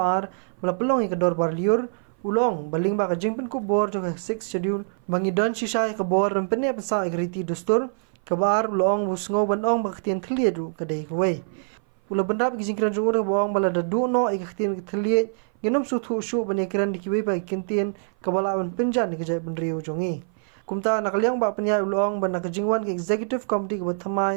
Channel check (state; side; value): silent; left; 57 dB below the other